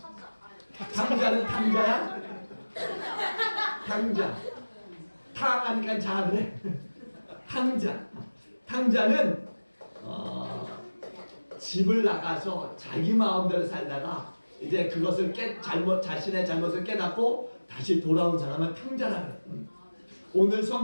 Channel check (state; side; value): inverted; both; correlation -1.00